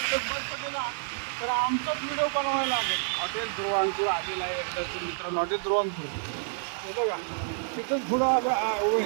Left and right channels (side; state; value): left; silent; 59 dB below the other